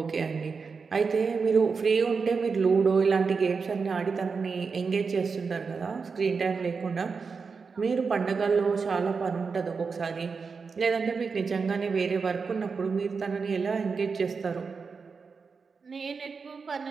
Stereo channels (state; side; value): quieter; left; 5.1 dB